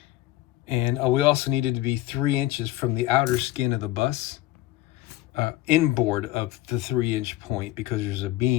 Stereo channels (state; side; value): quieter; right; 16.0 dB